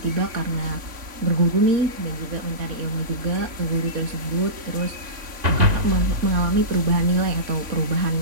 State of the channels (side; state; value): left; late; 3.5 ms